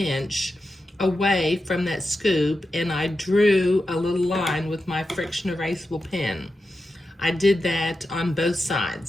away from that scoop, and I drew a little line with my friction erasable pen. I did that on both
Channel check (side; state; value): both; normal; correlation 0.90